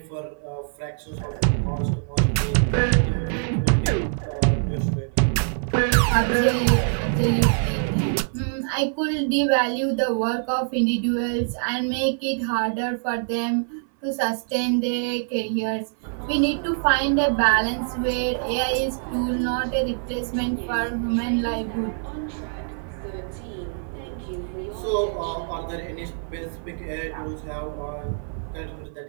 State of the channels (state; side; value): silent; left; 62 dB below the other